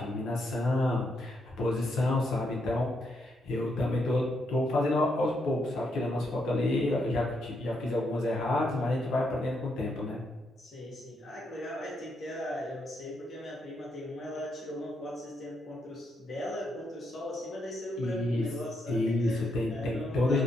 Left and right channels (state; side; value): normal; both; correlation 0.79